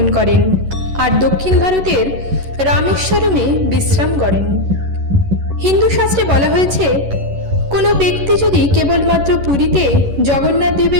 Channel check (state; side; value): late; left; 11 ms